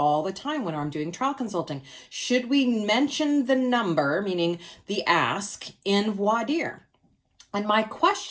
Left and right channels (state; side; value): identical; both; correlation 1.00